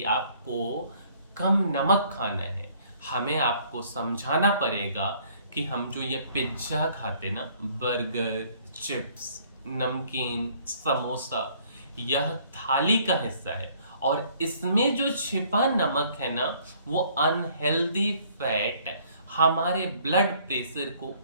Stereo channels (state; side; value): inverted; both; correlation -0.60